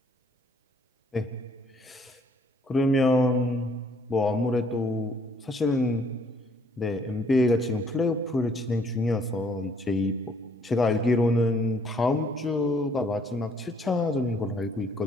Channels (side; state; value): both; normal; correlation 0.64